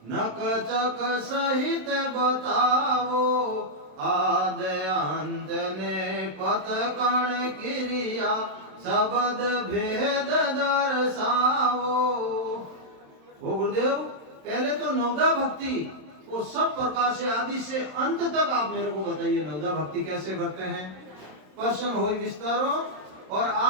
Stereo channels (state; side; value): late; left; 27 ms